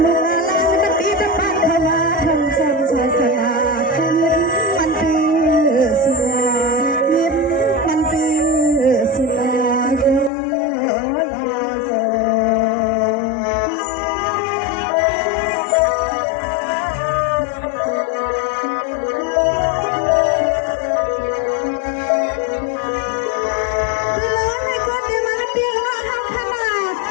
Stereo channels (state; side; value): drops out; right; at 10.3 s